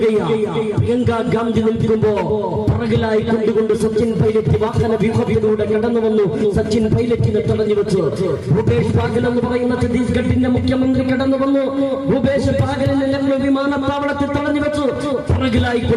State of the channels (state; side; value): identical; both; correlation 1.00